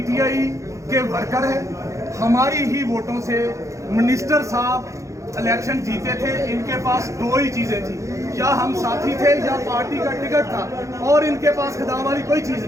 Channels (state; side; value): late; left; 0.15 ms